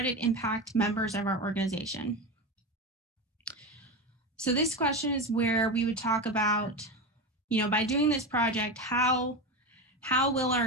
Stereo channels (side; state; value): both; normal; correlation 0.19